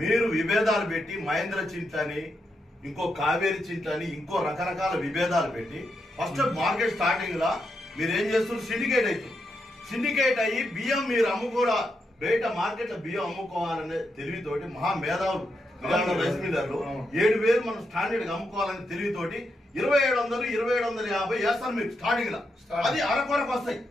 మీరు విభేదాలు పెట్టి మహేంద్ర చింతని ఇంకో కావేరి చింతని ఇంకో రకరకాల విభేదాలు పెట్టి ఫస్ట్ మార్కెట్ స్టార్టింగ్ లా మీరు ఏం చేస్తున్నారు సిండికేట్ అవుతుంది. సిండికేట్ అయ్యి బియ్యం మీరు అమ్ముకోరా బయట మార్కెట్ లో బియ్యం అమ్ముకోవాలనే తెలివితోటి మహా మేధావులు రైస్ మిల్లర్లు 7,000 మనం స్టాండర్డ్ గా అమ్ముకోవాలని తెలివితోటి 2,700 2,750 వేస్తారు మీకు స్టార్టింగ్ లా. అది అరకొరకు వస్తాయి.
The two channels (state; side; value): normal; both; correlation 0.83